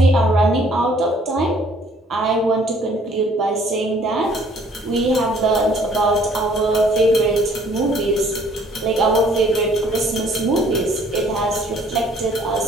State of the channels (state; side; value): normal; both; correlation 0.59